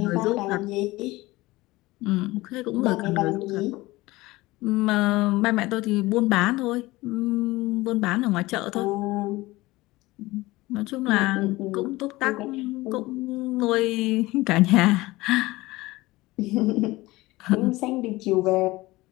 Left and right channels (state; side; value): quieter; right; 19.8 dB